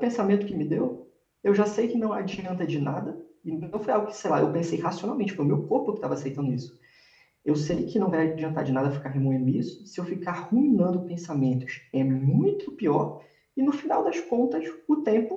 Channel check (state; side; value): identical; both; correlation 1.00